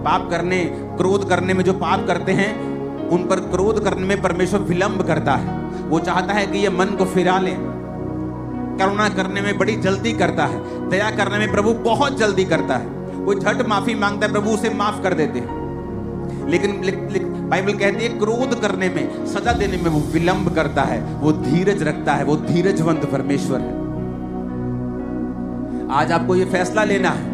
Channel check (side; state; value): both; identical; correlation 1.00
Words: करने, क्रोध करने में जो पाप करते हैं उन पर क्रोध करने में परमेश्वर विलंब करता है। वो चाहता है कि ये मन को फिरा ले। करुणा करने में बड़ी जल्दी करता है, दया करने में प्रभु बहुत जल्दी करता है। कोई झट माफी मांगता है, प्रभु उसे माफ कर देते हैं। लेकिन बाइबल कहती है क्रोध करने में, सजा देने में वो विलंब करता है, वो धीरज रखता है, वो धीरजवंत परमेश्वर है। आज आपको ये फैसला लेना